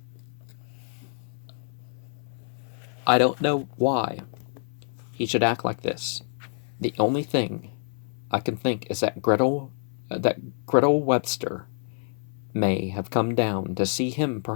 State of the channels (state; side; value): silent; right; 60 dB below the other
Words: I don't know why he should act like this. The only thing I can think is that Gretel Webster may have come down to see him,